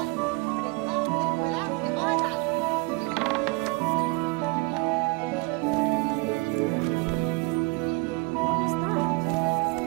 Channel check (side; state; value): left; quieter; 28.3 dB